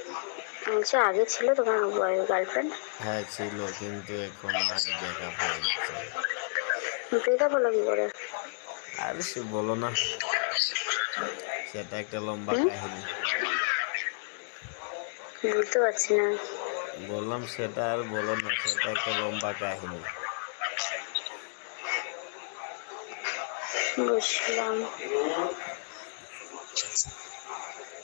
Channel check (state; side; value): silent; right; digital silence